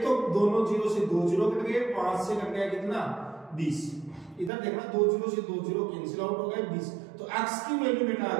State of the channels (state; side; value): drops out; left; at 4.5 s